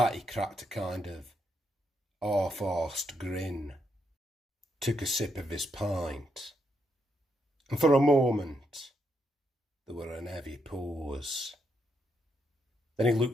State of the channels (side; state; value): both; normal; correlation 0.79